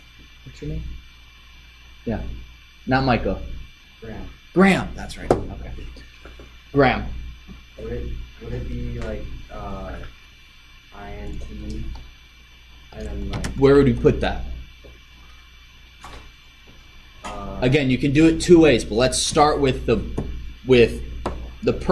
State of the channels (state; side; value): identical; both; correlation 1.00